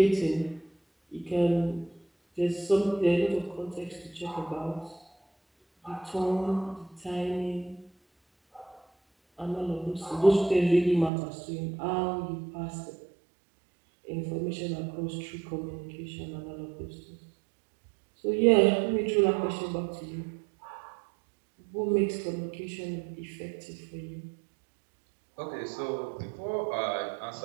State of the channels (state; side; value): drops out; left; at 11.1 s